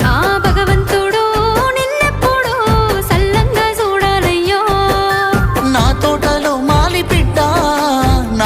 ఆ భగవంతుడు నిన్నెప్పుడు సల్లంగా చూడాలయ్యో నా తోటలో మాలి బిడ్డ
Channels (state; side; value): identical; both; correlation 1.00